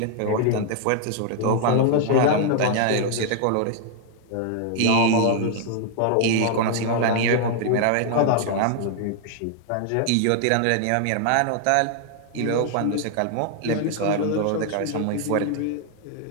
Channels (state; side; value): different; both; correlation 0.00